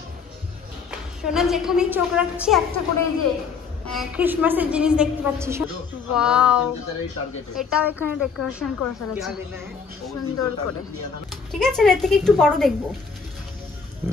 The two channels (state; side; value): quieter; right; 5.6 dB